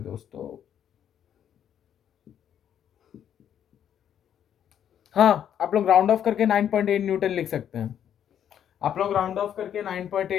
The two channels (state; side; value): quieter; right; 9.6 dB